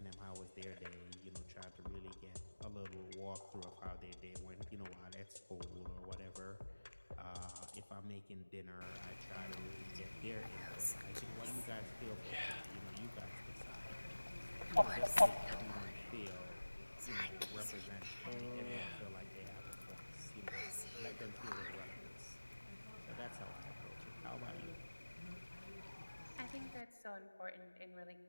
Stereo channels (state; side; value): inverted; both; correlation -1.00